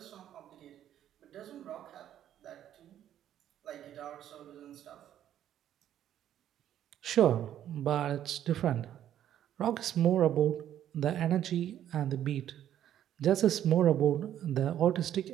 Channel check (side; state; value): left; quieter; 11.0 dB